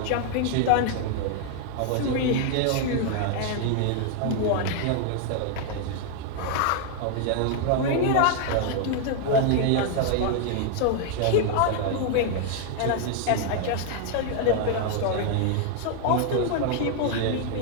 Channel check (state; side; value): different; both; correlation 0.00